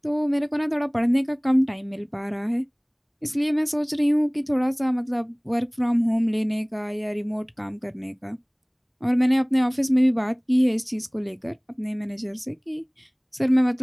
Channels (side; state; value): both; identical; correlation 1.00